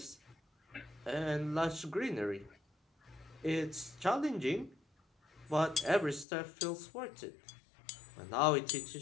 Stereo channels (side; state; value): right; drops out; at 6.2 s